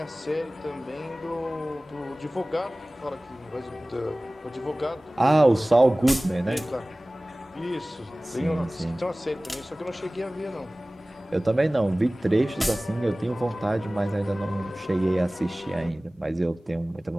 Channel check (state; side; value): normal; both; correlation 0.98